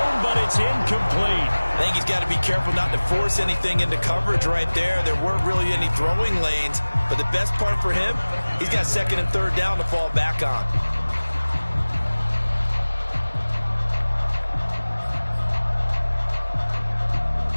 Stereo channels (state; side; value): inverted; both; correlation -1.00